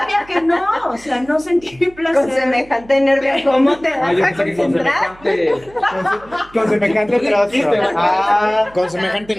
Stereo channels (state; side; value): noise; right; hum, 24 dB below the sound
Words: que no, o sea, no sentir placer. Con semejante nervio, ¿cómo te vas Ah, yo a pensé que con concentrar? semejante. Con semejante trozo. Ah, Con semejante